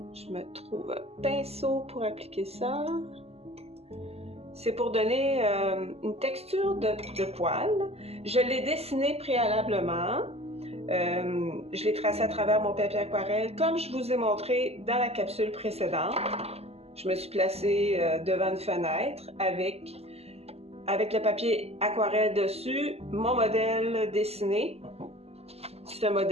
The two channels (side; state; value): left; late; 0.29 ms